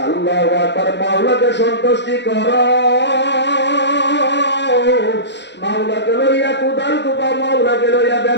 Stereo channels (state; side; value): late; right; 0.51 ms